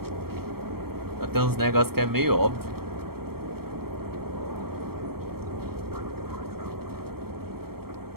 Tem uns negócios que é meio óbvio.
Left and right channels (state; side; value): late; left; 0.95 ms